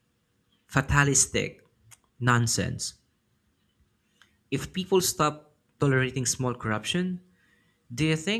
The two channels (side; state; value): both; identical; correlation 1.00